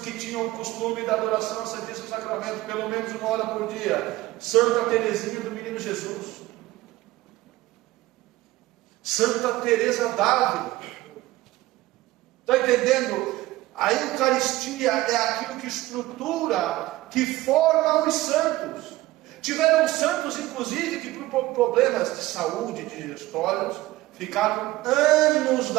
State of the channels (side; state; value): left; quieter; 17.5 dB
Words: tinham o costume da adoração ao Santíssimo Sacramento, pelo menos 1 hora por dia. Santa Teresinha do Menino Jesus. Santa Teresa d'Ávila. Está entendendo? A Eucaristia é aquilo que estrutura, que forma os santos. Tiveram santos, inclusive, que por problemas de saúde, digestórios, ficaram anos